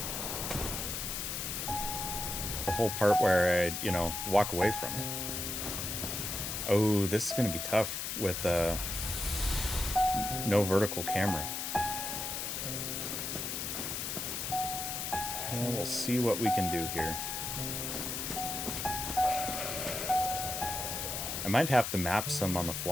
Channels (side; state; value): left; noise; hiss, 3 dB below the sound